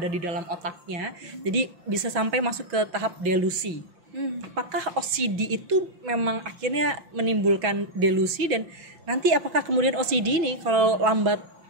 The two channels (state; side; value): late; left; 5.8 ms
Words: di dalam otaknya, jadi bisa sampai masuk ke tahap delusi. Apakah OCD itu memang akhirnya menimbulkan delusi, dan nanti apakah kemudian OCD ini kalau lambat